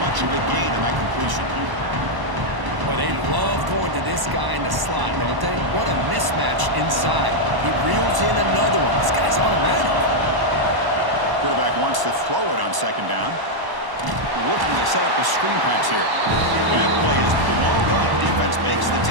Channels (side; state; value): left; late; 1.0 ms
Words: much of a gain on that completion. Well, they love going to this guy in the slot, don't they? What a mismatch inside. He reels in another one. This guy's automatic. Quarterback wants to throw it on 2nd down. Looking to set up a screen pass here. That play is blown up. Defense makes the